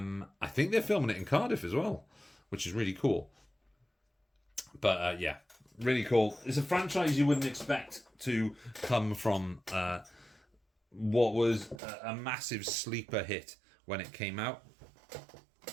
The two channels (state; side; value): drops out; left; at 11.8 s